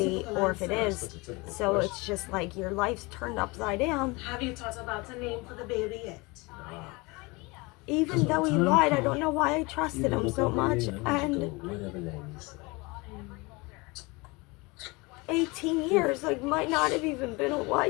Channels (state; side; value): quieter; right; 25.4 dB